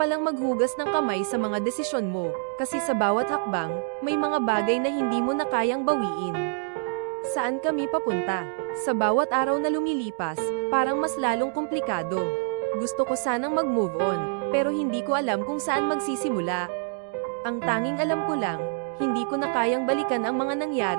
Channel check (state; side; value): silent; left; 61 dB below the other